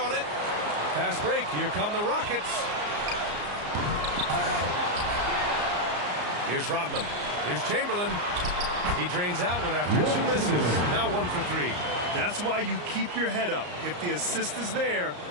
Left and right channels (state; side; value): late; left; 34 ms